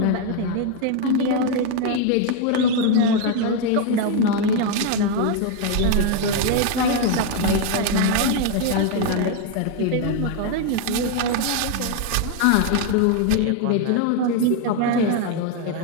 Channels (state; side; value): different; both; correlation 0.01